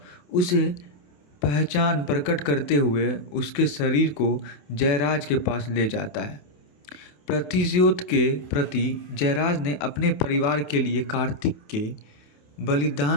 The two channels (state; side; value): late; right; 28 ms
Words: उसे पहचान प्रकट करते हुए उसके शरीर को जयराज के पास ले जाता है। प्रतिशोध के प्रति जयराज ने अपने परिवार के लिए कार्तिक के